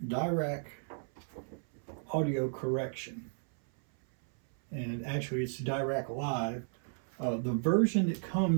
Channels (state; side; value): silent; left; 55 dB below the other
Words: Dirac audio correction, and actually it's Dirac Live. The version that